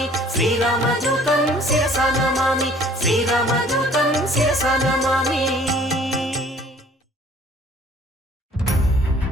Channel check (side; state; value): both; normal; correlation 0.55